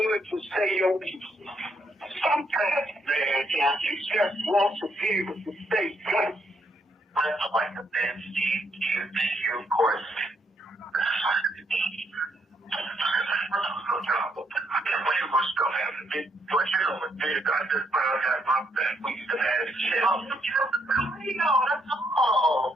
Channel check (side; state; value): both; normal; correlation 0.74